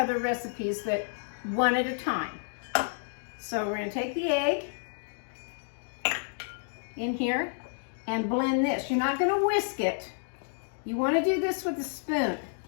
recipes that one at a time. So we're going to take the egg in here and blend this. You're not going to whisk it. You want to do this with a spoon.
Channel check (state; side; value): silent; right; digital silence